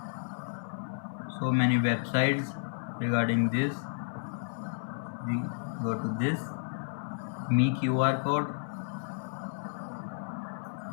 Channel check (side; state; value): right; silent; digital silence